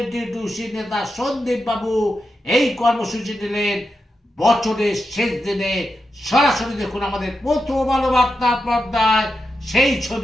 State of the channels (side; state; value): both; normal; correlation 0.88